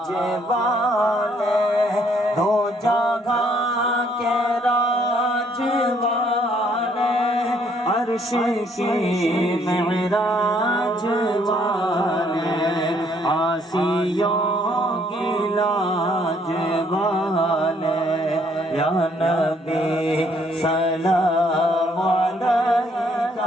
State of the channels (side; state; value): both; normal; correlation 0.66